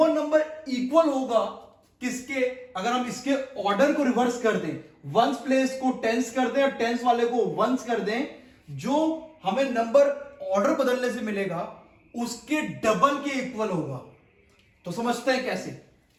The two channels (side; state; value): both; identical; correlation 1.00